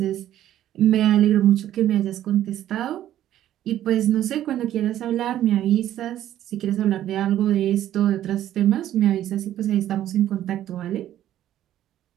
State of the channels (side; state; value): left; quieter; 12.3 dB